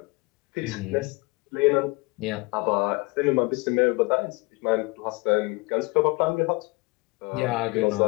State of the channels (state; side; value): quieter; right; 26.2 dB